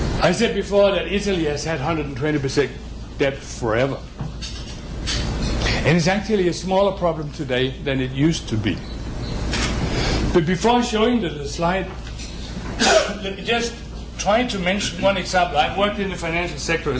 I said before that Italy has had 120% debt forever. And it's actually a smaller problem today than it used to be. But before showing the slide, let me just try to mention one example. I've worked in the financial sector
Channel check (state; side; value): identical; both; correlation 1.00